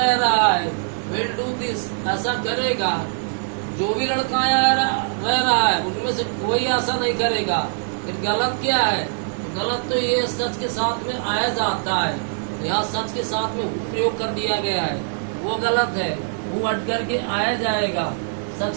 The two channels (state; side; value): silent; left; digital silence